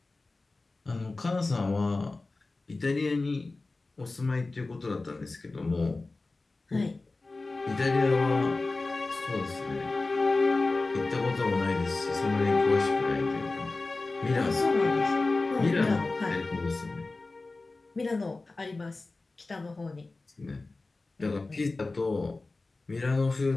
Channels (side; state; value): right; quieter; 3.4 dB